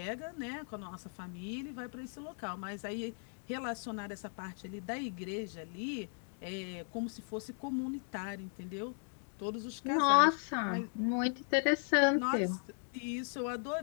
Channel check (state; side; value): silent; right; 53 dB below the other